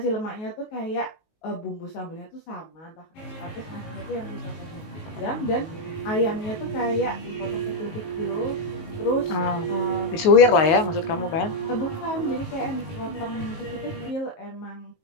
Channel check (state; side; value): late; right; 19 ms